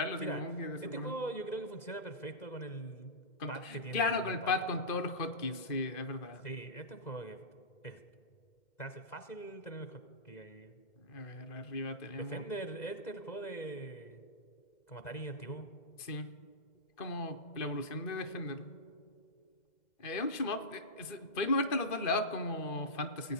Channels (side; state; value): right; late; 2.1 ms